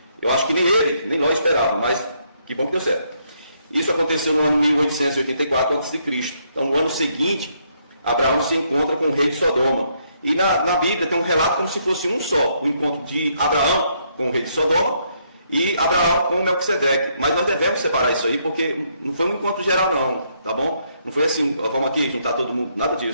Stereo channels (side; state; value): both; inverted; correlation -0.73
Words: Eu acho que nem ele, nem Ló esperava, mas que bom que deu certo. Isso aconteceu no ano 1884 a.C. Então, no ano seguinte, Abraão se encontra com o rei de Sodoma. E na Bíblia tem um relato como se fosse um só, o encontro de Abraão com o rei de Sodoma e Abraão com Melquisedeque. Mas nós devemos separar isso aí, porque não foi um encontro geral não, tá bom? Não foi assim, vamos aqui juntar todo mundo, nada